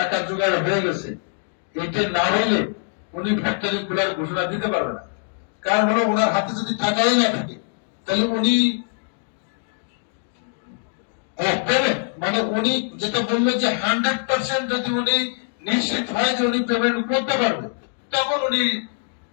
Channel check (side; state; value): right; silent; 58 dB below the other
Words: জোগাড় হয়ে গেছে, এটা না হইলে উনি ফ্যাক্টরি খোলার ঘোষণা দিতে পারবে না। কারণ হলো ওনার হাতে যদি টাকাই না থাকে তাহলে উনি করবেন। মানে উনি যেটা বললেন যে 100% যদি উনি নিশ্চিত হয় যে উনি পেমেন্ট করতে পারবে, তখন উনি